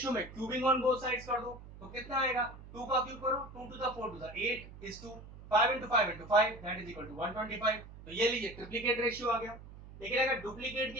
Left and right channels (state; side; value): noise; right; hum, 16 dB below the sound